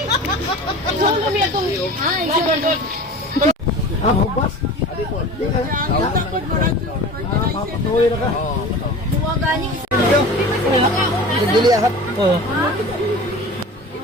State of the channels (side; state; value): both; normal; correlation 0.37